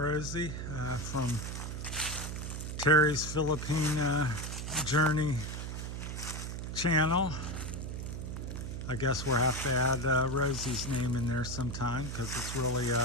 from Terry's Philippine Journey channel. I guess we'll have to add Rosie's name in there sometime because it's really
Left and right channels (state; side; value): noise; right; hum, 5 dB below the sound